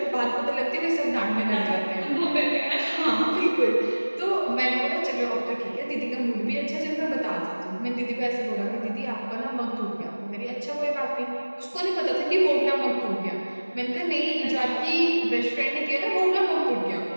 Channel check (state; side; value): inverted; both; correlation -1.00